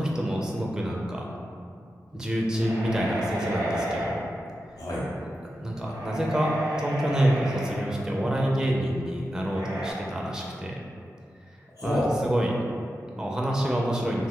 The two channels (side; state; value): both; normal; correlation 0.90